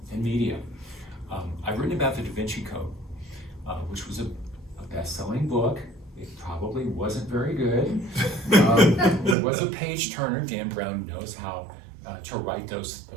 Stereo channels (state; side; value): drops out; left; at 9.3 s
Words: and media. I've written about the Da Vinci Code, which was a best-selling book. It probably wasn't very good. It was a page turner. Dan Brown knows how to write those